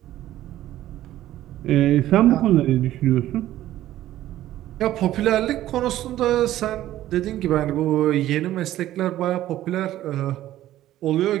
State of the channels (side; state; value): left; quieter; 13.8 dB